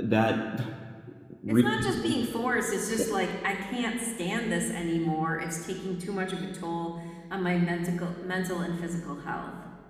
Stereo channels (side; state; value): both; identical; correlation 1.00